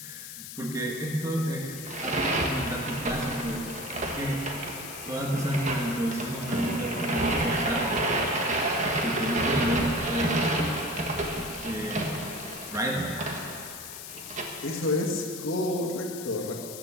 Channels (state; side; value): noise; left; hiss, 10 dB below the sound